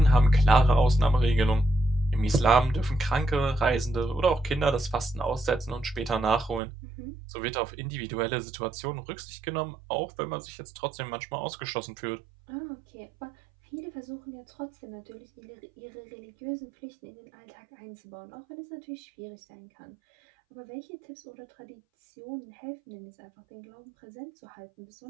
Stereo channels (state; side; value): drops out; left; at 6.6 s